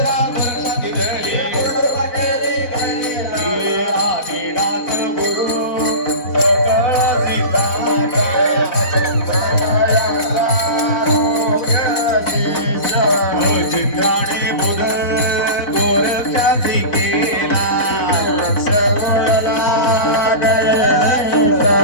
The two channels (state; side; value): late; right; 4.1 ms